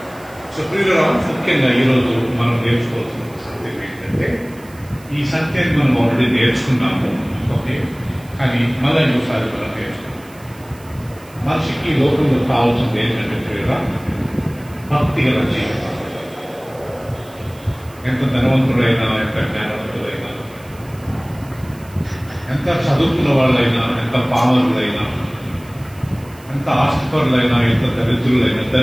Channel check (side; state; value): right; noise; hiss, 24 dB below the sound